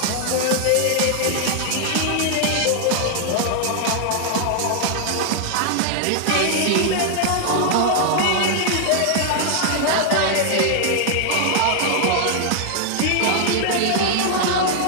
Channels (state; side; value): different; both; correlation 0.00